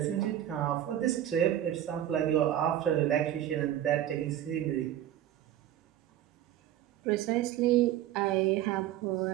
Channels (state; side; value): quieter; left; 12.0 dB